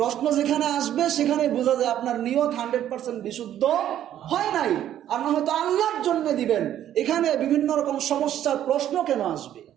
প্রশ্ন যেখানে আসবে সেখানে বোঝা যায় আপনার নিয়ত 100% বিশুদ্ধ হয় নাই। আর না হয়তো আল্লাহর জন্য দিবেন, এখানে বিভিন্ন রকম সমস্যার প্রশ্ন কেন আসবে?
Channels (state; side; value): quieter; left; 11.3 dB